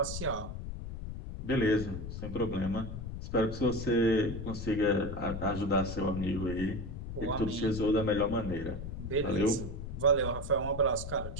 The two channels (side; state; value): left; noise; rumble, 7 dB below the sound